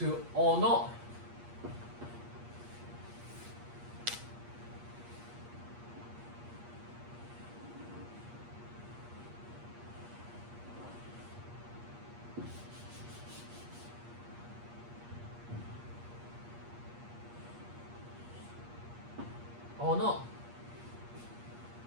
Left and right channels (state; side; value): late; left; 8.4 ms